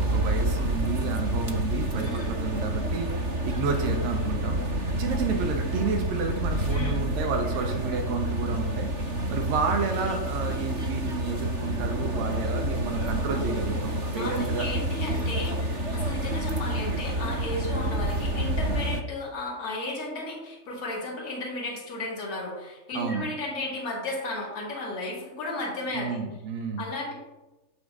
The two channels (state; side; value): late; left; 3.4 ms